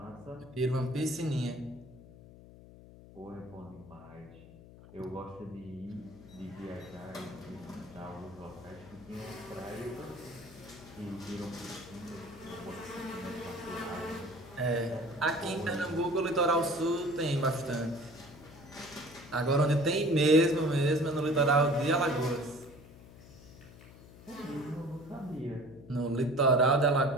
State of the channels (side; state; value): left; noise; hum, 19 dB below the sound